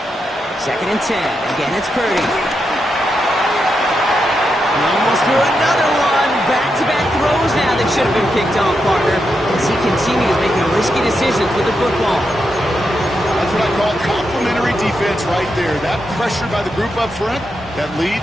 2nd and 10. Again, it's Purdy. He almost threw another one. Back-to-back throws now that should have been picked off, partner, as he continues making risky decisions with the football. That's what I call complementary defense right there. That pressure by the group up front, that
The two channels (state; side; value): normal; both; correlation 0.85